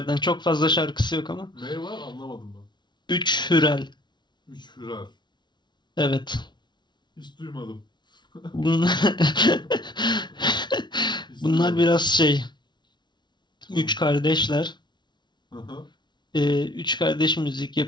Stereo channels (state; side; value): late; right; 0.21 ms